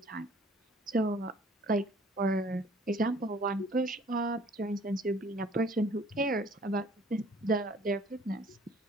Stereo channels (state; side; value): normal; both; correlation 0.54